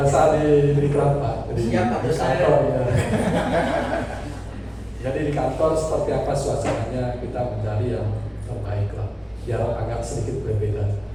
di Kelapa, di kantor ya. Jadi di kantor seperti apa suasananya, kita mencari yang terbaik lah, biar agak sedikit berbeda.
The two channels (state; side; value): identical; both; correlation 1.00